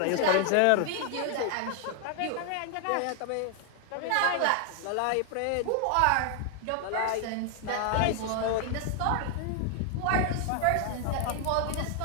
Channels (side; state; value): both; different; correlation 0.00